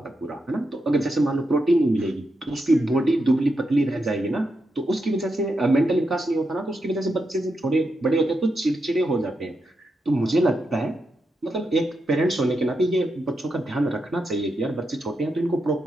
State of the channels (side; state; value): both; normal; correlation 0.85